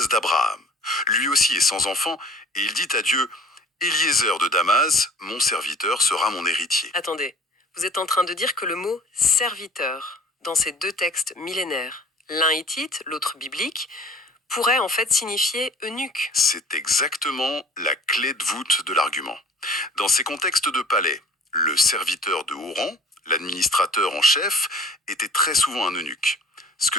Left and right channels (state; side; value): normal; both; correlation 0.48